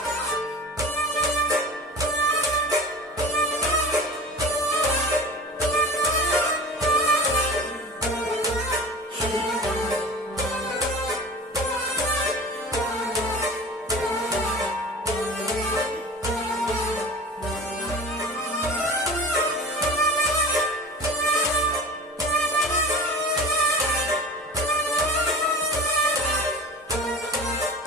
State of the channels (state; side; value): normal; both; correlation 0.37